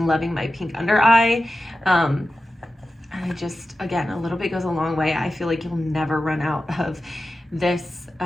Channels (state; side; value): normal; both; correlation 0.93